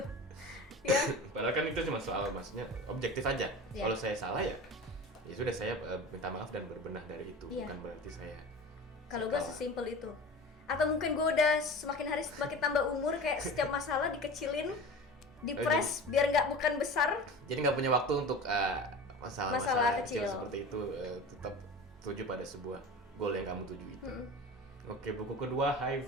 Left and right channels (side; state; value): both; normal; correlation 0.34